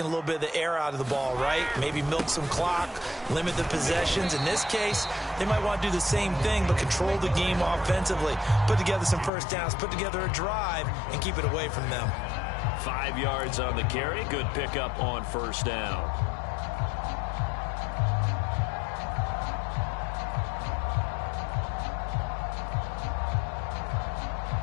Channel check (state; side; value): drops out; right; at 9.3 s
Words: a little bit of the air out of the ball, right? Maybe milk some clock, limit the possessions. In this case, they might want to do the same thing, but control the game offensively. Put together some first downs, put together a drive, and keep it away from them. 5 yards on the carry. Good pickup on first down.